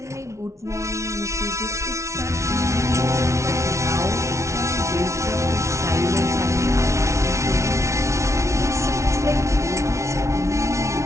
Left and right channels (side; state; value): left; late; 0.14 ms